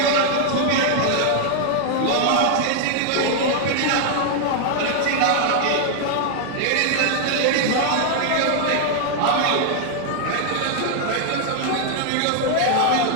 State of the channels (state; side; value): different; both; correlation 0.00